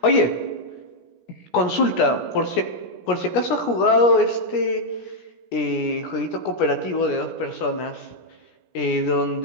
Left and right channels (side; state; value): right; late; 17 ms